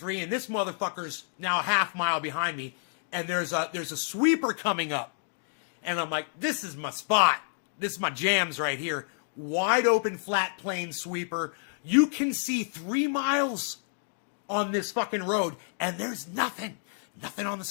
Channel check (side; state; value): right; silent; digital silence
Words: and this motherfucker's now a half mile behind me, and there's a sweeper coming up. And I'm like, this is my spot. This is my jams right here. Wide open, flat plane sweeper. You can see 3 miles on this fucking road, and there's nothing. Nothing on the